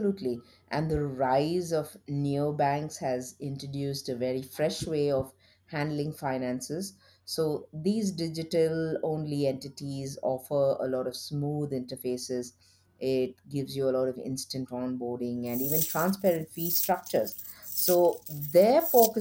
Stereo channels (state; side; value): identical; both; correlation 1.00